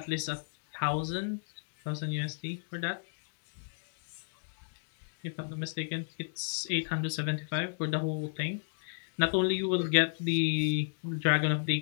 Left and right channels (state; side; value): silent; right; digital silence